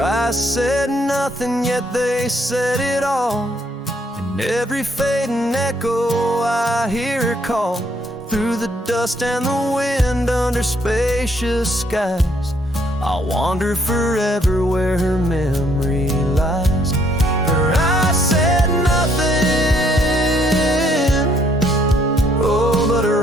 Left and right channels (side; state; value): both; normal; correlation 0.68